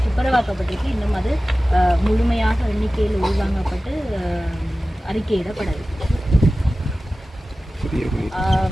துப்புரவாக்கப்பட்டிருக்கு. இன்னும் அது முழுமையாக எண்ணிக்கையில் உள்வாங்கப்பட்டு அறிக்கையிடப்படவில்லை.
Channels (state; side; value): normal; both; correlation 0.96